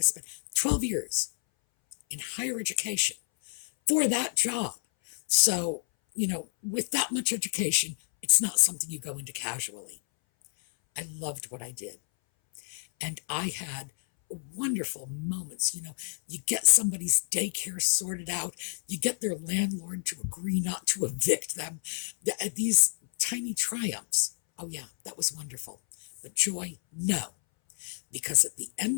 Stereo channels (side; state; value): right; silent; 58 dB below the other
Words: spend? 12 years in higher education for that job. So, with that much education, it's not something you go into casually. I loved what I did. And I had wonderful moments. You get somebody's daycare sorted out, you get their landlord to agree not to evict them. These tiny triumphs. Oh, yeah, that was wonderful. But joy, no. Because at the